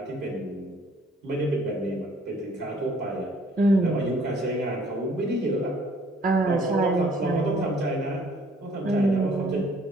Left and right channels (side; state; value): both; normal; correlation 0.59